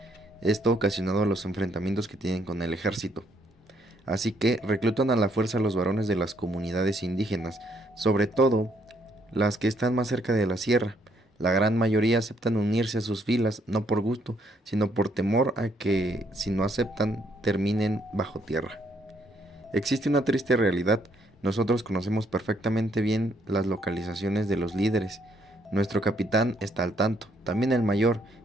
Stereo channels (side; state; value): both; normal; correlation 0.71